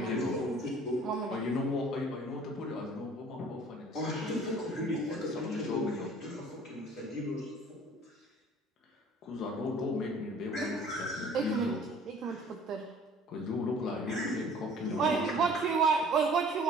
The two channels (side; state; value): both; normal; correlation 0.50